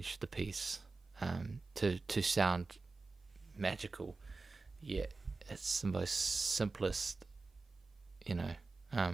the piece, to sound magical. Yet it's the most simplest, you know,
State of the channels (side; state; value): left; quieter; 3.8 dB